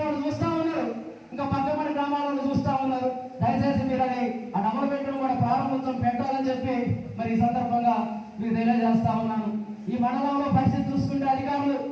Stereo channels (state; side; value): identical; both; correlation 1.00